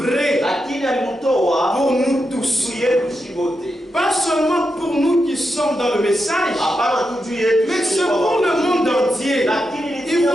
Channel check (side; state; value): both; normal; correlation 0.86